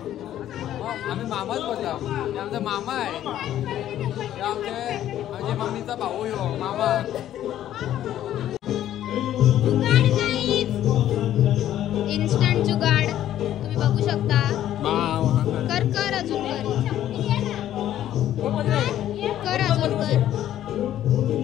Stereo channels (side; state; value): right; quieter; 12.0 dB